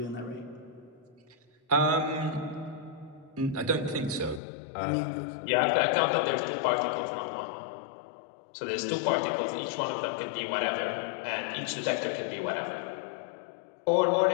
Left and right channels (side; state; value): right; drops out; at 4.4 s